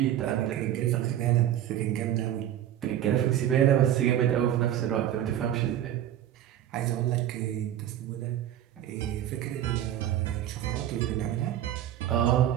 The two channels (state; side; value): quieter; left; 11.5 dB